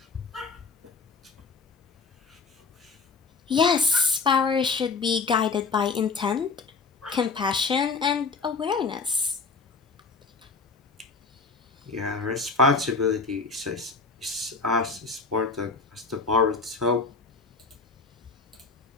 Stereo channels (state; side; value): quieter; right; 4.5 dB